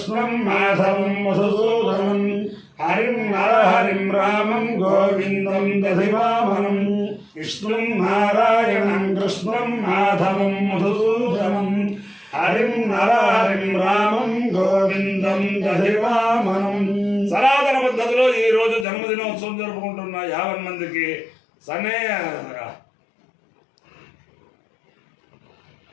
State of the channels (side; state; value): right; drops out; at 18.9 s